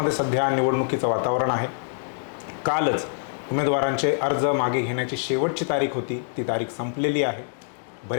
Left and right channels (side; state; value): right; silent; digital silence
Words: सध्या निवडणुकीचं वातावरण आहे. कालच उमेदवारांचे अर्ज मागे घेण्याची शेवटची तारीख होती. ती तारीख संपलेली आहे.